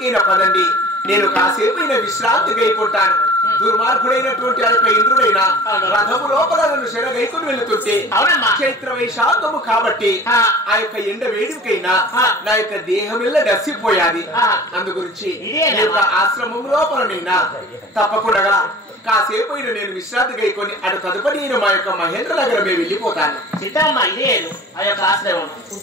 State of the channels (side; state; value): both; normal; correlation 0.42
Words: పదండి. నేను కాసేపైనా విశ్రాంతి గైకుంటాను. దుర్మార్గుడైనటువంటి ఆ యొక్క ఇంద్రుడైన రథము లోపల నన్ను శరగైకొని వెళుతుంటే చైత్ర వైశాఖము కాబట్టి ఆ యొక్క ఎండ వేడికైనా నా యొక్క దేహమిల్ల గసిపోయాది. అందు గురించి ఆశ్రమం లోపలనైనా తప్పకుండా కాసేపు నేను విశ్రాంతి గైకొని అటు తదుపరి నేను మా యొక్క మహేంద్ర నగరమే వెళ్ళిపోతాను. సీతమ్మ ఇదే ఆ యొక్క ఆశ్రమం